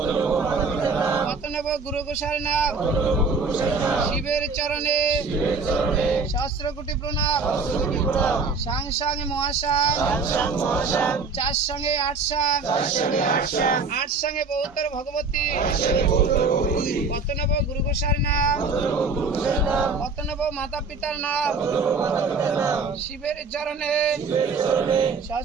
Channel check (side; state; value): left; quieter; 4.4 dB